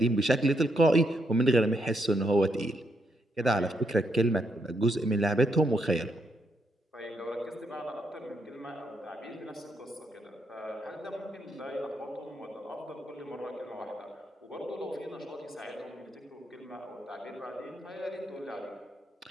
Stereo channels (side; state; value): both; normal; correlation 0.78